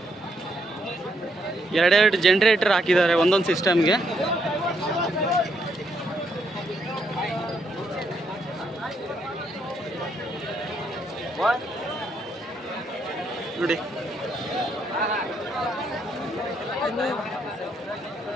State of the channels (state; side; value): normal; both; correlation 0.75